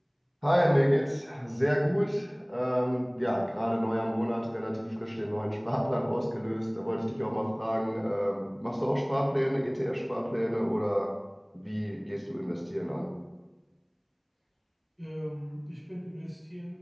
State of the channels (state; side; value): identical; both; correlation 1.00